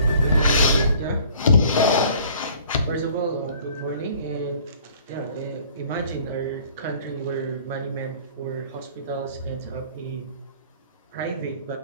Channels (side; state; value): both; inverted; correlation -0.53